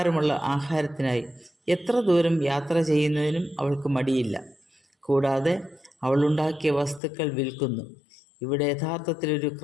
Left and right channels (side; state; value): right; drops out; at 7.0 s